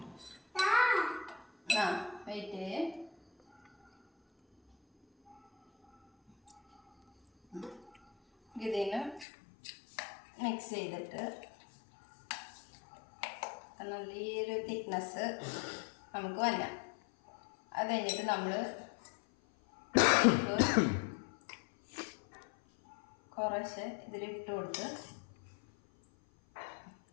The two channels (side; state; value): right; drops out; at 9.2 s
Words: വെയിറ്റ്. ഇതിന് മിക്സ് ചെയ്തിട്ട് നല്ല ഈ ഒരു തിക്നെസ് നമുക്ക് വരാം. അത് കഴിഞ്ഞിട്ട് നമ്മൾ കുറച്ച് ഇതിലിട്ട് കൊടുത്ത്